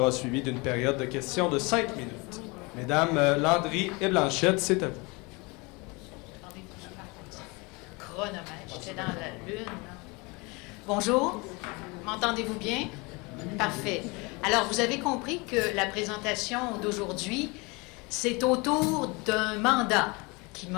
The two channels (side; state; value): right; quieter; 27.2 dB